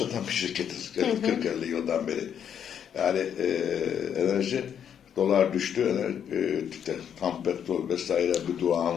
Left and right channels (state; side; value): quieter; right; 8.6 dB